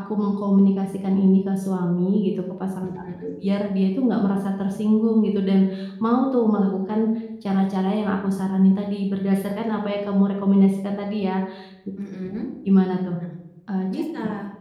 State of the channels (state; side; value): identical; both; correlation 1.00